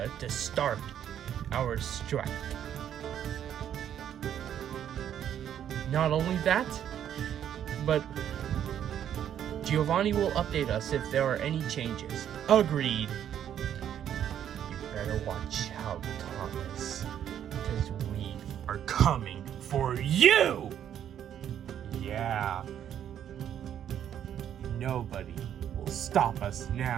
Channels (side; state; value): left; quieter; 9.9 dB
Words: to start our strike. Not only that, but Giovanni will update us if there are any changes. Agreed. You better watch out, Thomas, because we are coming for you! Yeah. Nobody will stop us